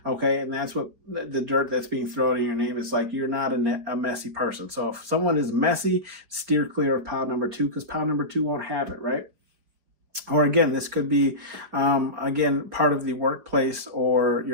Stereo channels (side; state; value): left; late; 4.9 ms